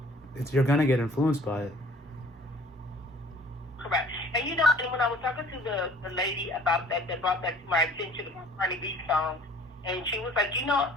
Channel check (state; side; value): normal; both; correlation 0.52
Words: going to get influenced by it. Correct. And and when I was talking to the lady about that brought that to my attention, about Cardi B song, and she was like,